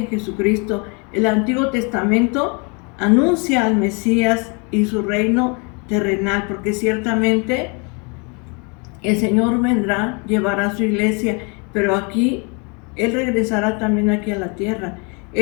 Jesucristo. El Antiguo Testamento anuncia al Mesías y su reino terrenal, porque ciertamente el Señor vendrá, llevará a su iglesia, pero aquí Él regresará también aquí a la tierra.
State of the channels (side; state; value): right; quieter; 33.3 dB